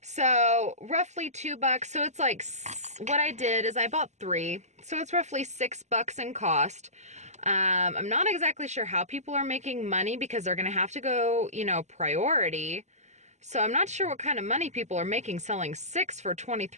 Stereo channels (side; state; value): left; late; 0.33 ms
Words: So roughly $2. So it's like, what I did is I bought 3. So it's roughly $6 in cost. I'm not exactly sure how people are making money because they're gonna have to go, you know, priority. So I'm not sure what kind of money people are making selling 6 for